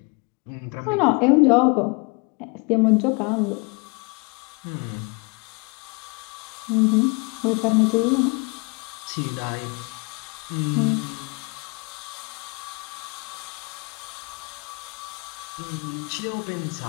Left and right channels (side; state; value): right; quieter; 30.7 dB